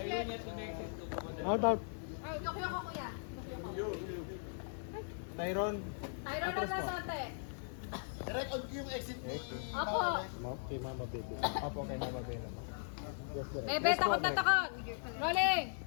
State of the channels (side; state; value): right; silent; 52 dB below the other